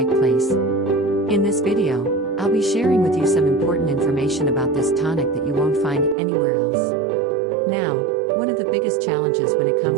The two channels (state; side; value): drops out; left; at 6.2 s